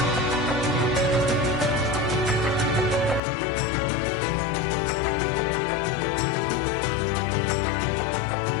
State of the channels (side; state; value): right; drops out; at 3.2 s